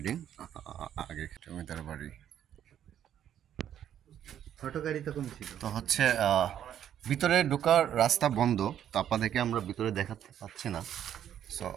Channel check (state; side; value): quieter; left; 10.3 dB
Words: আগে জমিদার বাড়ি। তো হচ্ছে ভিতরে ঢোকার রাস্তা বন্ধ, তো আপনাদেরকে আমরা ভিতরে দেখাতে পাচ্ছি না। সো